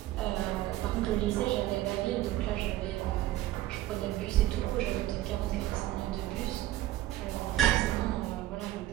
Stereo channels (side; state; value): left; quieter; 15.0 dB